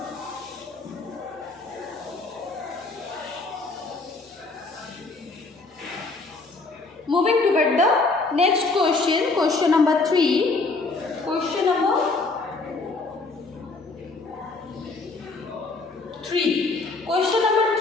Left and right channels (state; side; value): quieter; right; 3.6 dB